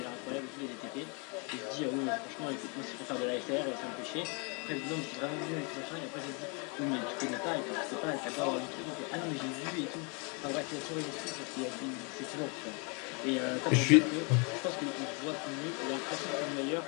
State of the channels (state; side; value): quieter; right; 34.1 dB